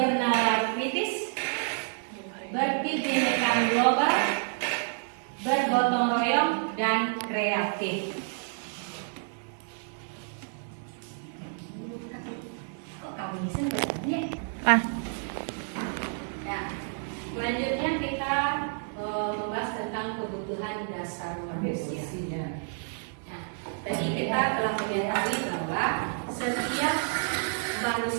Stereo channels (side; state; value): left; silent; 58 dB below the other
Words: kritis, berkebinekaan global, bergotong royong, dan kreatif. Kok kamu sebenarnya? Selanjutnya kita membahas tentang kebutuhan dasar manusia. Nah, tadi kita telah mengetahui bahwa setiap